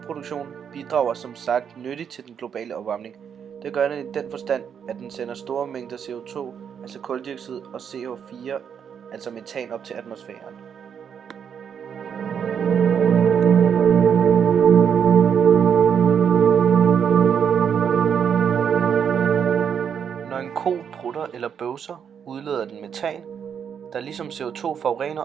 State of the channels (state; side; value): quieter; left; 7.7 dB